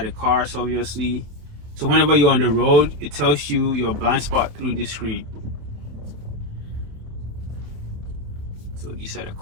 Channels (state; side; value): late; left; 28 ms